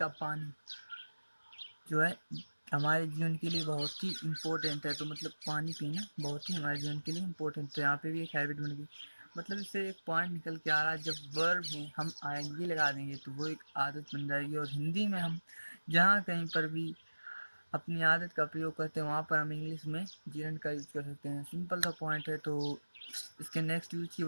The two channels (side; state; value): both; inverted; correlation -1.00